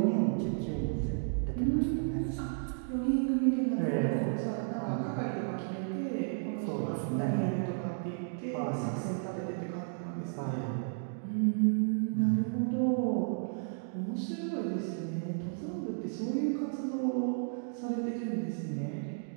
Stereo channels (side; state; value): left; silent; digital silence